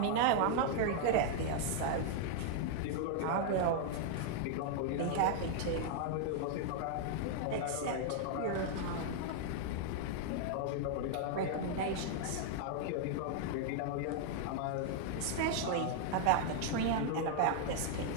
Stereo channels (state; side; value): different; both; correlation 0.00